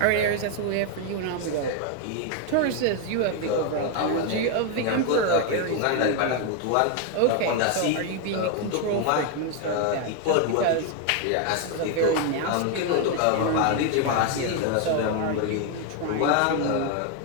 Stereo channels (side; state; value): both; different; correlation 0.01